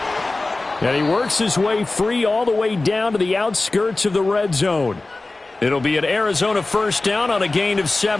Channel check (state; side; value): quieter; right; 3.2 dB